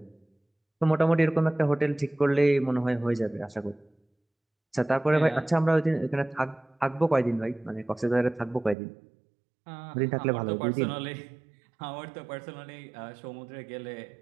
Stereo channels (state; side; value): drops out; left; at 8.8 s